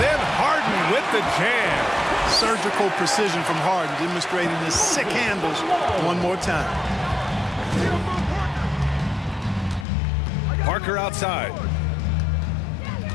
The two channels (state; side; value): drops out; right; at 9.9 s